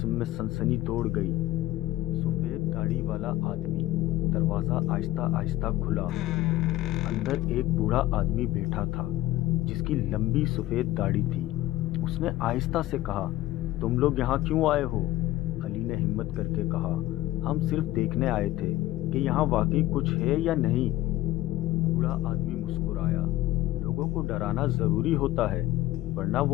में सनसनी दौड़ गई। सफेद दाढ़ी वाला आदमी। दरवाजा आहिस्ता आहिस्ता खुला। अंदर एक बूढ़ा आदमी बैठा था जिसकी लंबी सफेद दाढ़ी थी। उसने आहिस्ता से कहा, तुम लोग यहाँ क्यों आए हो? अली ने हिम्मत करके कहा, हम सिर्फ देखने आए थे कि यहाँ वाकई कुछ है या नहीं। बूढ़ा आदमी मुस्कुराया, लोगों को डराना जरूरी होता है वरना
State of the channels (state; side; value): quieter; right; 16.2 dB